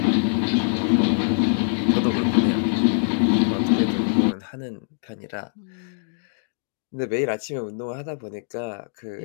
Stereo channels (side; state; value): right; silent; 63 dB below the other